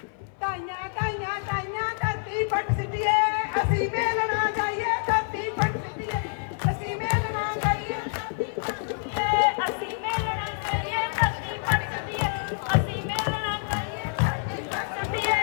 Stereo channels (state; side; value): silent; right; 59 dB below the other